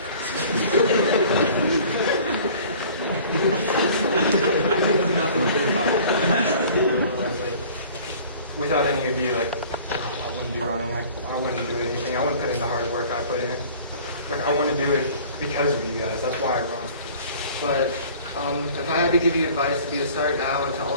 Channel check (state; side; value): inverted; both; correlation -0.48